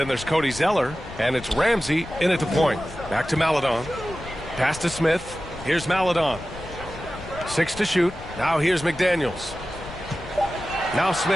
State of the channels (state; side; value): noise; left; rumble, 14 dB below the sound